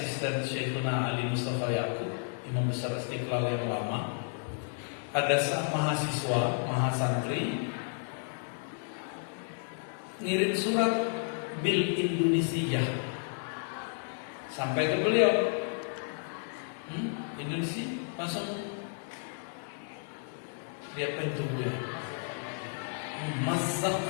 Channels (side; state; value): right; silent; digital silence